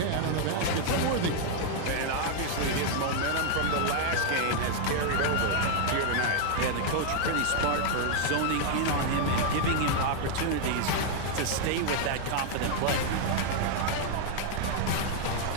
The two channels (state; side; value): different; both; correlation 0.00